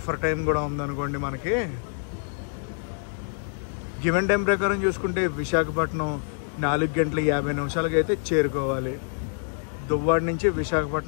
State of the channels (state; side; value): silent; right; 59 dB below the other